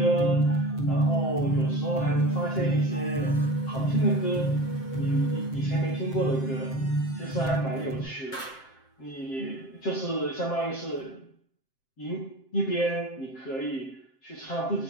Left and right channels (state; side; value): late; right; 7.6 ms